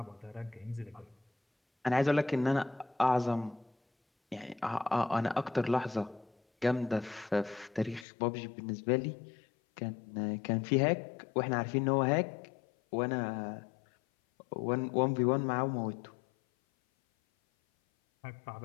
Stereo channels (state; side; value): drops out; right; at 8.1 s